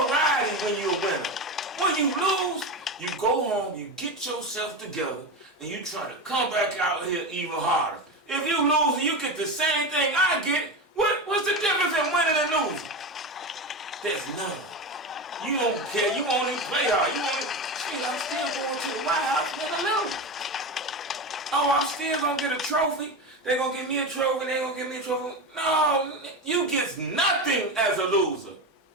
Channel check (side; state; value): both; normal; correlation 0.20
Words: when you're a winner. When you lose, you go home, you get yourself together, and you try to come back out here even harder. If you lose and you get the same thing I get, what's the difference in winning and losing? There's none. You don't care. You won't even play hard. Shit, I'm still going to the White House when I lose. Oh, I'm still going to get a trophy. They're going to give me a trophy. They're going to give me a trophy. No, you get nothing as a loser.